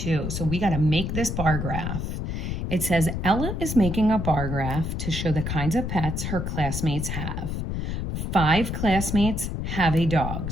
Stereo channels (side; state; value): left; noise; rumble, 3 dB below the sound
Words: So we got to make this bar graph. It says, Ella is making a bar graph to show the kinds of pets her classmates have. 5 classmates have a dog.